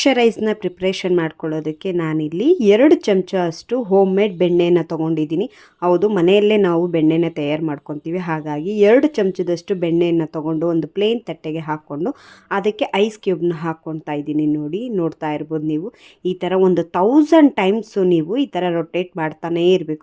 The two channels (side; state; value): both; identical; correlation 1.00